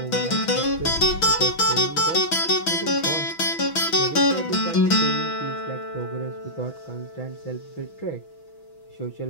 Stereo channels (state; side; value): late; right; 6.1 ms